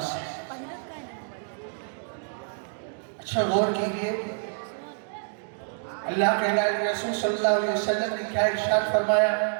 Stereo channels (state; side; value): silent; left; digital silence